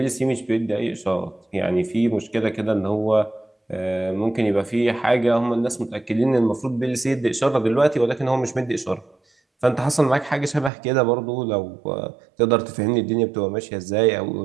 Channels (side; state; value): left; drops out; at 10.7 s